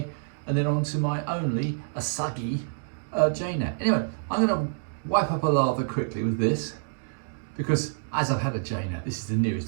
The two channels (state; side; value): silent; left; digital silence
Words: and then onto my only Asagi Jnat. Anyway, I'm going to wipe up a lather quickly with this, because as I've had a Jnat, this is the